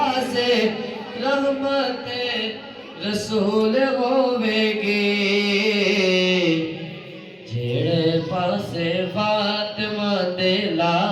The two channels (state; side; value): identical; both; correlation 1.00